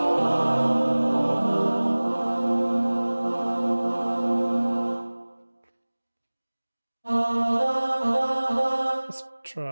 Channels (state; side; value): inverted; both; correlation -1.00